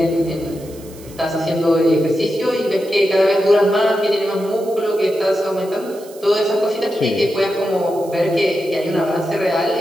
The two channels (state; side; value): noise; right; hiss, 22 dB below the sound